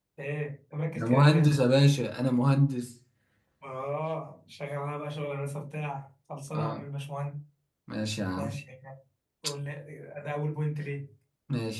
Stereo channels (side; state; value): both; identical; correlation 1.00